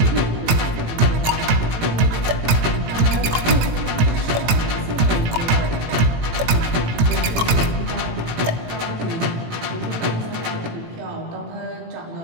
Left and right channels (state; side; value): late; left; 18 ms